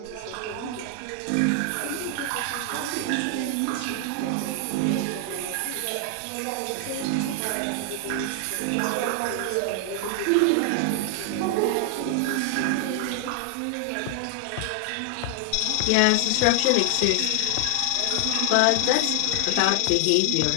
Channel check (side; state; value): both; different; correlation 0.00